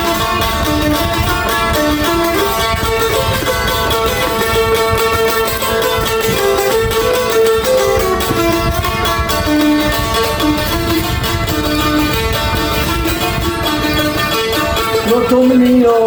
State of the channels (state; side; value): identical; both; correlation 1.00